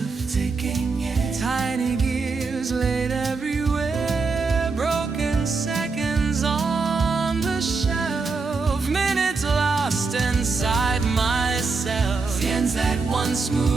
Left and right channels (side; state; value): left; quieter; 4.3 dB